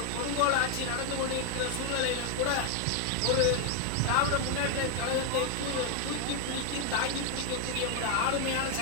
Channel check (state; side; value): different; both; correlation 0.01